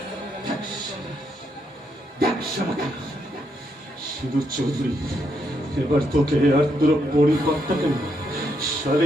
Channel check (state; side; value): normal; both; correlation 0.78